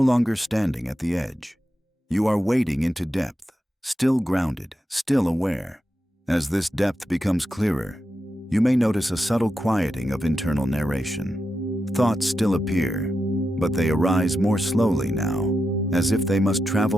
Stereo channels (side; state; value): both; normal; correlation 0.88